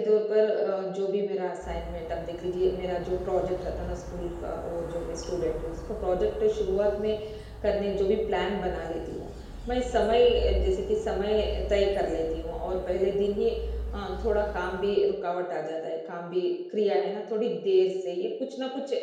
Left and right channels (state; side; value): identical; both; correlation 1.00